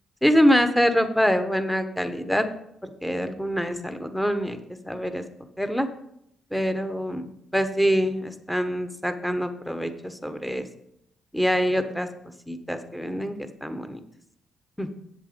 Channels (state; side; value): normal; both; correlation 0.94